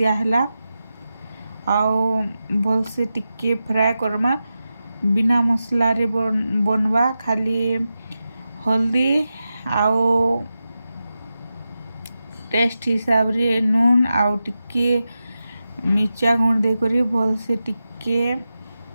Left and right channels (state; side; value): inverted; both; correlation -0.92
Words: आउ भल से टिके फ्राए करमा बिना मसला रे बनवा खाली हल्दी आउ टेस्ट हिसाब रे नून आउ टिके मिर्चा गुण दे करी भल से टिके